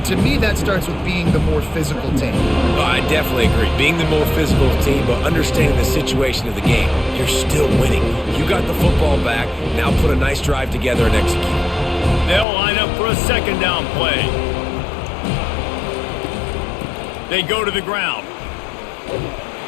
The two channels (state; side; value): drops out; right; at 12.5 s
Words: to me, that starts with being the more physical team. Oh, I definitely agree. Being the more physical team, but understanding the situation of the game. You're still winning. You got the football back. Now put a nice drive together and execute. They'll line up for a 2nd down play. They go to the ground.